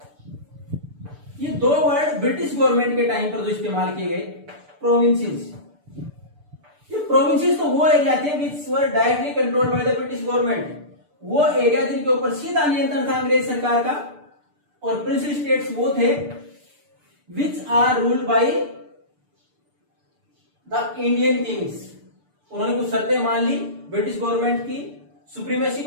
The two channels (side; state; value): left; late; 6.8 ms